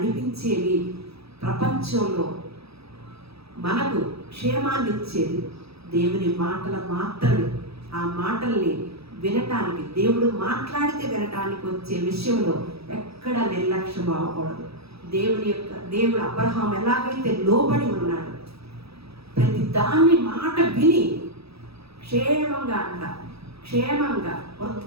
ప్రపంచంలో మనకు క్షేమాన్ని ఇచ్చేది దేవుని మాటలు మాత్రమే. ఆ మాటల్ని వినటానికి, దేవుడు మాట్లాడితే వినటానికి వచ్చే విషయంలో ఎక్కడ నిర్లక్ష్యం అవ్వకూడదు. దేవుడు అబ్రహాం ఎలాగైతే లోబడి ఉన్నాడు, ప్రతి దాన్ని మాట విని క్షేమంగా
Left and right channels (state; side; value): late; left; 0.77 ms